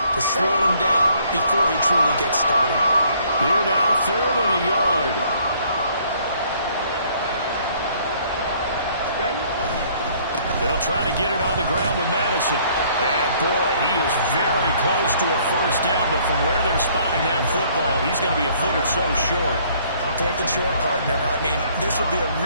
to slow him down before he truly gets started? Here now, 3rd and a yard. Ready? They'll try to get it on the ground with Madison. And boy, he is very close to a first down, but from where they're spotting that football, he's going to be a foot or so short. Fourth and short, partner. I mean, this would be a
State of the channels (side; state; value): both; inverted; correlation -0.61